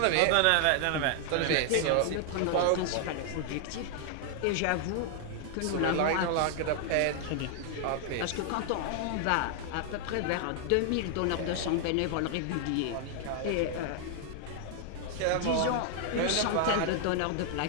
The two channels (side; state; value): both; different; correlation 0.00